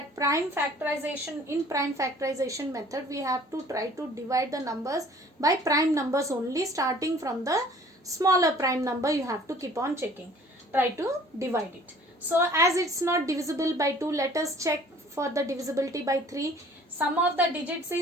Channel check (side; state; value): both; normal; correlation 0.52